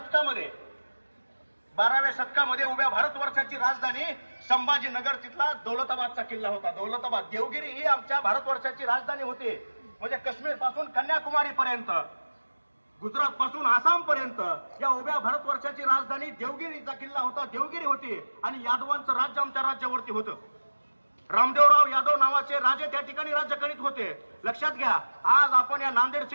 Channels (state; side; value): inverted; both; correlation -1.00